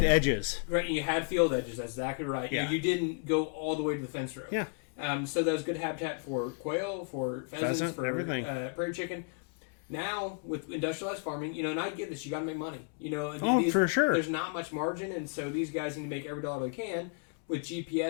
edges, right? And you had field edges. That's exactly right. Yeah. You didn't go all the way to the fence row. Yeah. So that was good habitat for quail, for pheasants, for prairie chicken. Now, with industrialized farming, and I get this, you got to make money. For sure. There's not much margin, and so these guys need to make every dollar they can with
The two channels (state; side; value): quieter; right; 38.3 dB